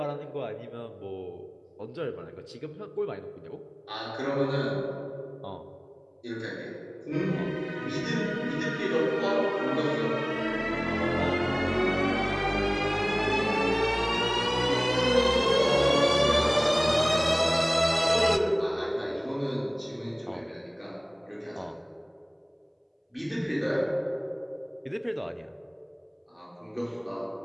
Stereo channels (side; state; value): both; identical; correlation 1.00